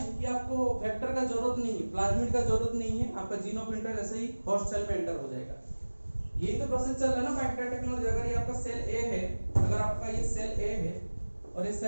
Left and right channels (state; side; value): inverted; both; correlation -1.00